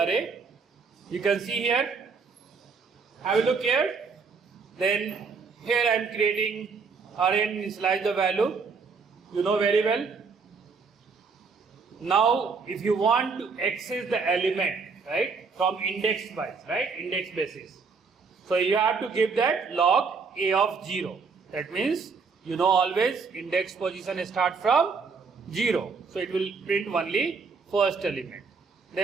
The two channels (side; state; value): left; quieter; 4.9 dB